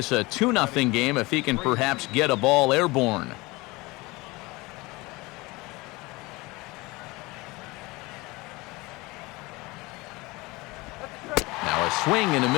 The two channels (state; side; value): quieter; right; 22.9 dB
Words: a 2-0 game if he can perhaps get a ball airborne. Now a swing and a